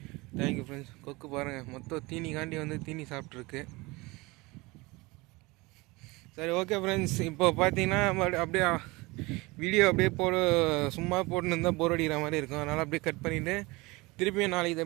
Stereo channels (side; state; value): left; quieter; 23.5 dB